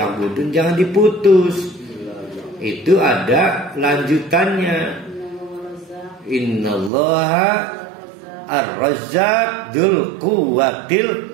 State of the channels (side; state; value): left; drops out; at 6.9 s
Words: Jangan diputus. Itu ada lanjutannya. Innallaha ar-Razzaq dzul